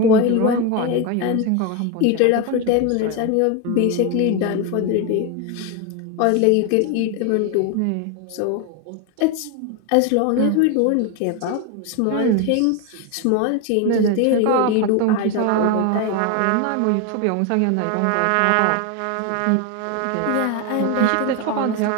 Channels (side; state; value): both; different; correlation 0.02